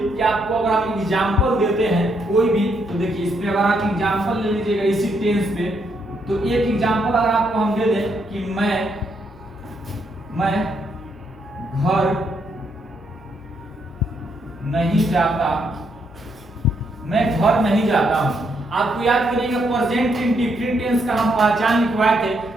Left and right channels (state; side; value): normal; both; correlation 0.76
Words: कि आपको अगर हम एग्जांपल देते हैं कोई भी, तो देखिए इसमें अगर आप एग्जांपल ले लीजिएगा इसी टेंस पे, तो एक एग्जांपल अगर आपको हम दे दें कि मैं घर नहीं जाता, मैं घर नहीं जाता हूं। आपको याद करिएगा प्रेजेंट इंडेफिनिट टेंस का हम पहचान लिखवाए थे